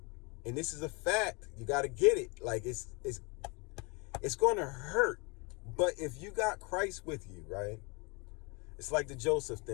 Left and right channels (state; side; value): quieter; right; 30.0 dB